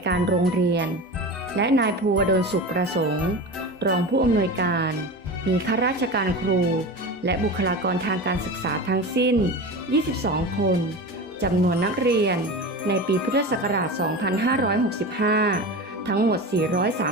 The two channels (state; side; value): normal; both; correlation 0.28